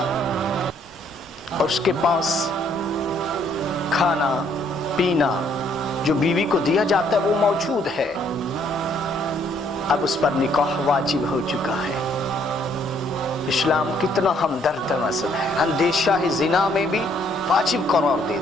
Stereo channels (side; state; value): both; normal; correlation 0.66